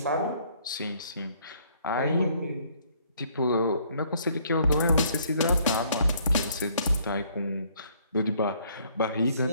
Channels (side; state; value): both; inverted; correlation -0.64